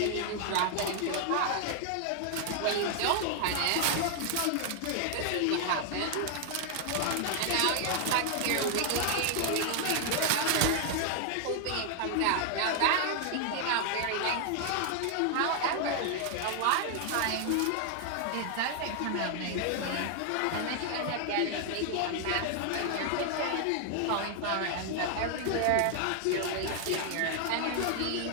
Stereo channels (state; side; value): different; both; correlation 0.00